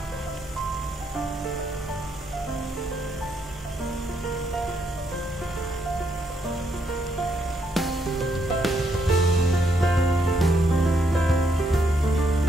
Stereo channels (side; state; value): both; normal; correlation 0.75